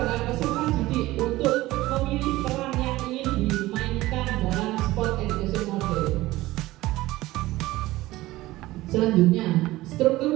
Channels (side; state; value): left; quieter; 17.8 dB